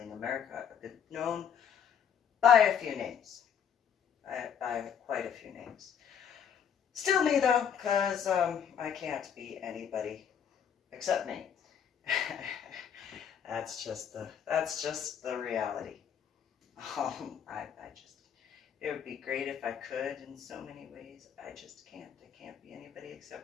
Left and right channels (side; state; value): right; quieter; 8.1 dB